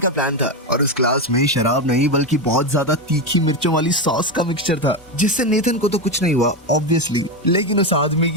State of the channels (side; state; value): both; normal; correlation 0.12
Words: प्लान था और उस क्लास में शराब नहीं बल्कि बहुत ज्यादा तीखी मिर्चों वाली सॉस का मिक्सचर था, जिससे नेथन को तो कुछ नहीं हुआ ऑब्वियसली, लेकिन उस आदमी